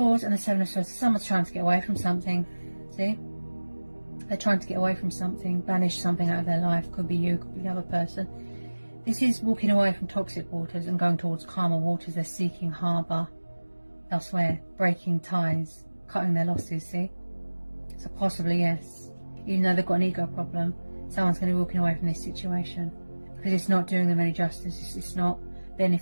and the Seven of Swords, someone's trying to get away from something. See? They're trying to get away from something, banish something out of their life. Could be you, could be the other person. This is walking away from toxic waters and going towards calmer waters. They're seeking harbour elsewhere, breaking ties, cutting their losses, see? So possibly, yes. Even though they've got an ego problem, someone's going to be walking away from this situation because it's not doing them any justice. It's not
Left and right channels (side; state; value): both; inverted; correlation -1.00